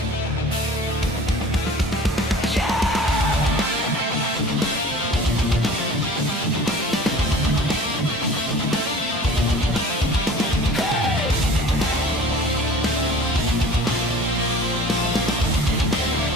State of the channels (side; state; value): both; normal; correlation 0.44